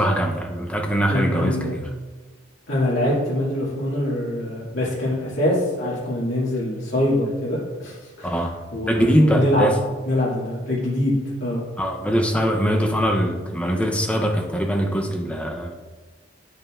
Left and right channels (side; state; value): both; normal; correlation 0.70